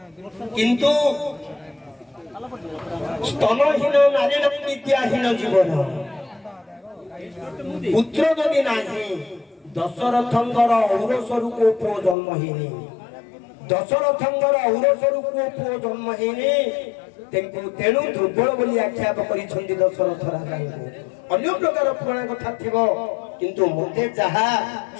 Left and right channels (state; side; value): drops out; right; at 12.2 s